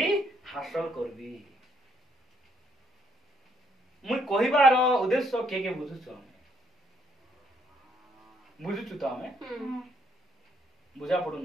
हासिल करबी। मुई कहिबार उद्देश्य के बुझुछु? आमे बुझुछु तो आमे बुझा पडु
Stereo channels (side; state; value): both; normal; correlation 0.69